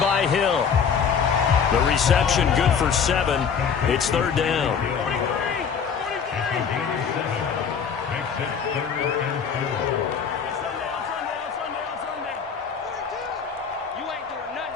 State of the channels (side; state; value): right; quieter; 6.7 dB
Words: by Hill. The reception good for 7. It's third down.